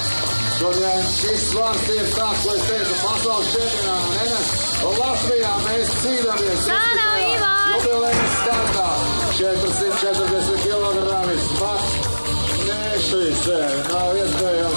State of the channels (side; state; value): both; inverted; correlation -1.00